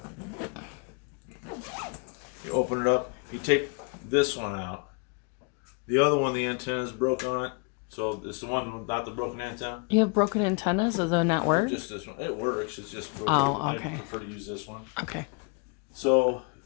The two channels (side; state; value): right; quieter; 34.2 dB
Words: You open it up. You take this one out. The other one, the antenna is broke on it. So it's the one without the broken antenna. You have broken antennas, so they'll not work. Just this one. It works. It's just broken. Oh, okay. I prefer to use this one. Okay. So